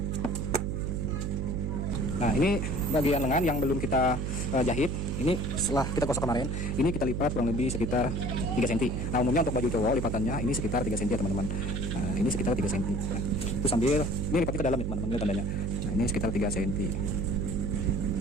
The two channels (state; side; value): noise; right; hum, 1 dB below the sound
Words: Nah ini bagian lengan yang belum kita jahit. Ini setelah kita gosok kemarin, ini kita lipat kurang lebih sekitar 3 cm. Nah umumnya untuk baju cowok lipatannya ini sekitar 3 cm ya teman-teman. Nah ini sekitar 3 cm. Nah, itu sambil ini lipatnya ke dalam ya teman-teman, lihat tandanya. Nah ini sekitar 3 cm.